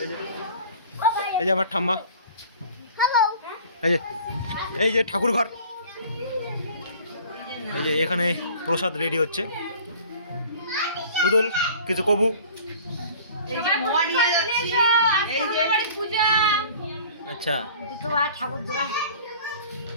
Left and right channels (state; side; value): inverted; both; correlation -0.46